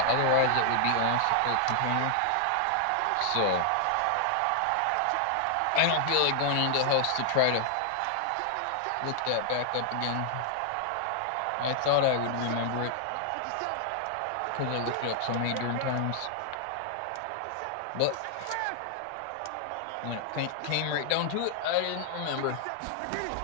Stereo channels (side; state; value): both; different; correlation 0.00